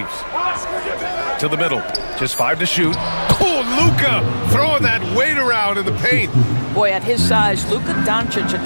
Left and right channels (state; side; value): inverted; both; correlation -1.00